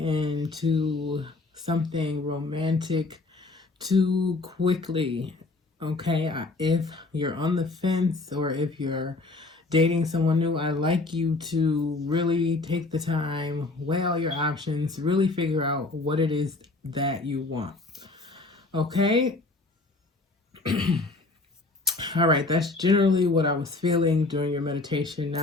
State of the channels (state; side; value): quieter; right; 3.4 dB